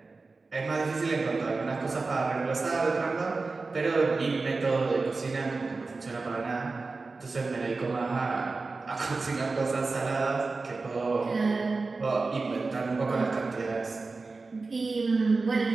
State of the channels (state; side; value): quieter; left; 3.9 dB